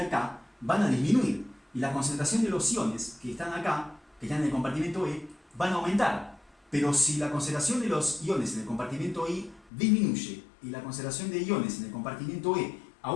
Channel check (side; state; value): right; drops out; at 9.7 s